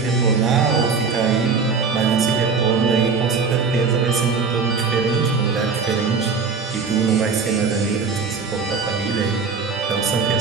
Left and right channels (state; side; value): quieter; left; 5.1 dB